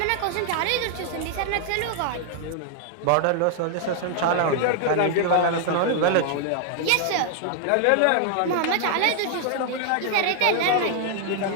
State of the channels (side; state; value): both; different; correlation 0.00